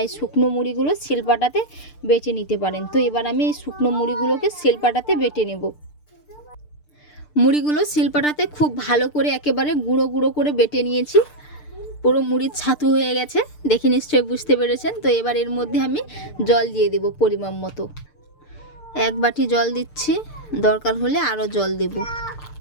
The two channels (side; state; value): right; late; 6.7 ms